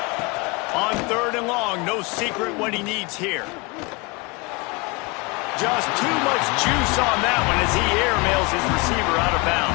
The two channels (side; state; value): right; quieter; 27.1 dB